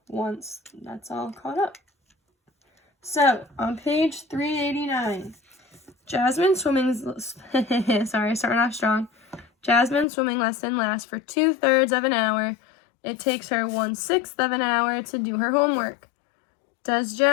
once that's all caught up. So on page 389, Jasmine's swimming starting off strong. Jasmine's swimming lesson lasts for 2/3 of an hour. It takes her 1/6 of an hour to do her homework. Does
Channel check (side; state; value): right; drops out; at 10.1 s